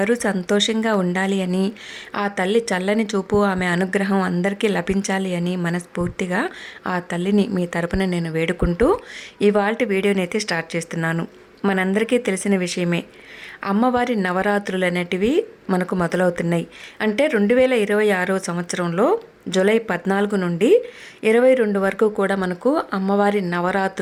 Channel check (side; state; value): both; identical; correlation 1.00